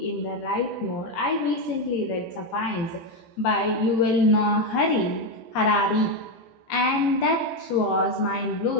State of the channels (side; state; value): right; late; 17 ms